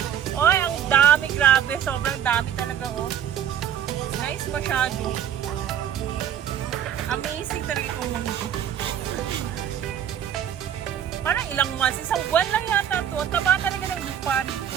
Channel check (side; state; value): left; quieter; 9.6 dB